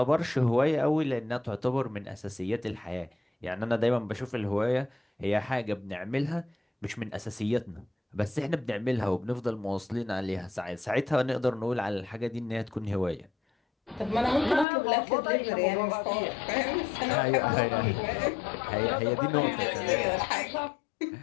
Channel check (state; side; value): drops out; right; at 14.7 s